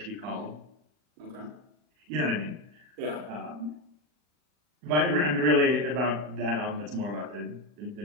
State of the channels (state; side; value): late; left; 40 ms